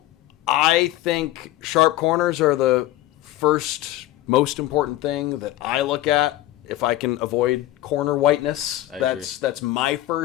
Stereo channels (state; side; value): quieter; right; 15.3 dB